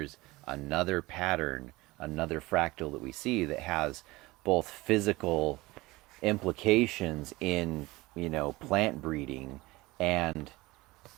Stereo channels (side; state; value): left; quieter; 21.0 dB